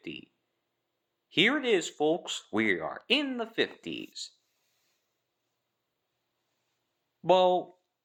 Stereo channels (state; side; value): identical; both; correlation 1.00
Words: Here it is, folks. We are in the 50s. Well,